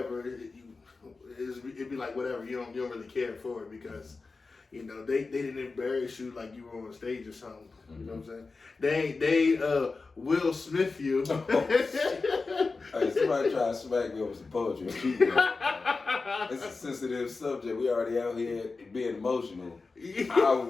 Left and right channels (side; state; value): right; quieter; 4.0 dB